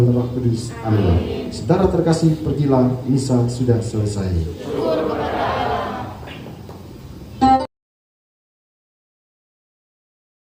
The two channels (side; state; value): both; identical; correlation 1.00